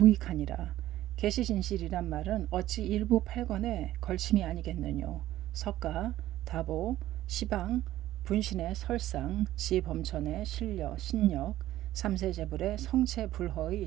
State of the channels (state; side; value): quieter; left; 14.3 dB